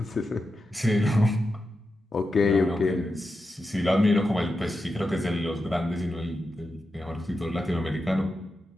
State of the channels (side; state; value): both; normal; correlation 0.89